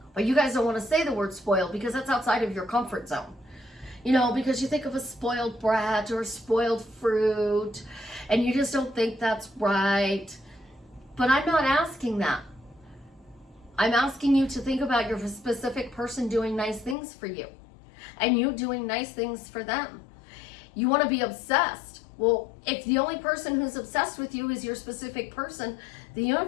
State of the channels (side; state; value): right; drops out; at 16.9 s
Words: But you guys don't want to say the word spoiled because that's outside of your comfort zone. You know, because you think of a spoiled brat or spoiled fruit, and you just don't think that's right. But I'm not asking that. I'm asking you to think about your specific person doing nice things for you, and you doing nice things for them. You want to be obsessed. Well, if the only person who's obsessed with you is your specific person, the